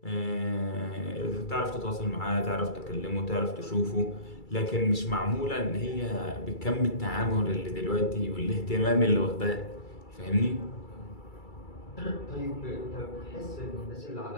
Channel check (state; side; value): late; right; 2.3 ms